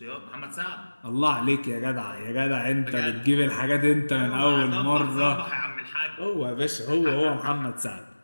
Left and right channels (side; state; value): both; inverted; correlation -1.00